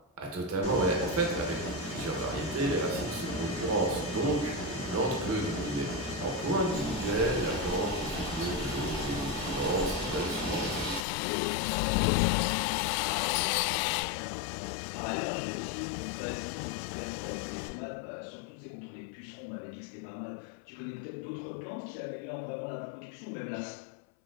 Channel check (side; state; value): right; drops out; at 11.0 s